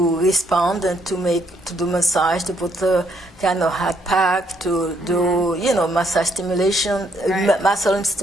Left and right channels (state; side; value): normal; both; correlation 0.71